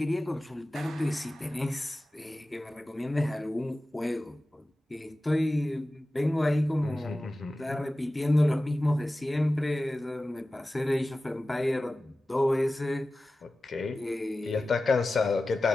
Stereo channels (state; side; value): normal; both; correlation 0.96